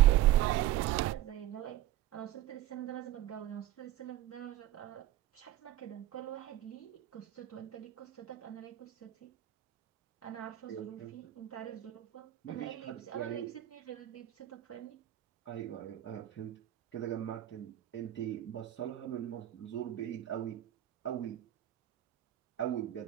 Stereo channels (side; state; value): left; quieter; 14.0 dB